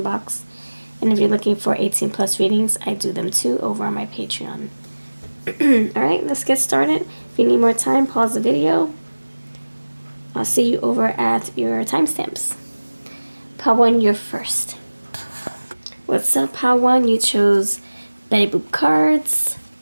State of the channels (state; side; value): inverted; both; correlation -1.00